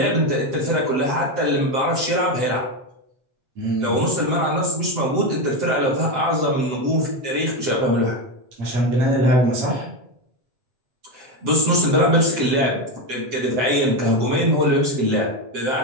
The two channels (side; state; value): left; late; 7.8 ms